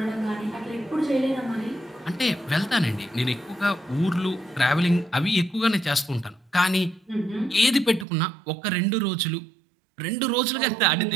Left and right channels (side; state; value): left; drops out; at 8.1 s